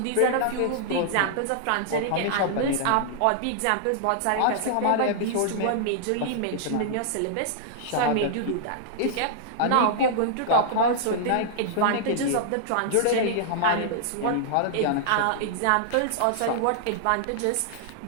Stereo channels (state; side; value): different; both; correlation -0.01